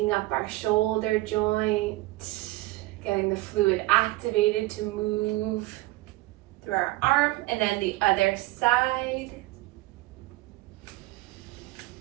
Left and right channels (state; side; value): quieter; left; 19.5 dB